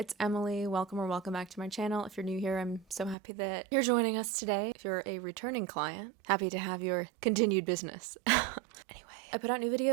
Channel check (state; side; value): drops out; left; at 3.2 s